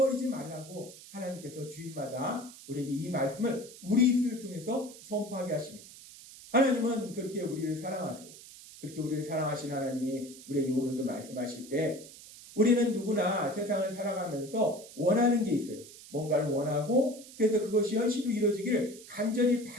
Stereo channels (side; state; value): right; noise; hiss, 17 dB below the sound